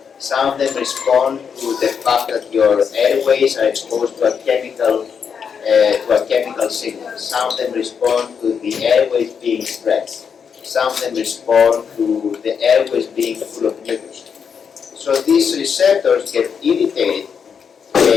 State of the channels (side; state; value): right; quieter; 6.7 dB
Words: Some of them respond to the fact that your airways are exposed to a chemical signal. Some of them respond to the airways being stretched. Some of them respond to the airways being full of mucus. So these receptors get irritated.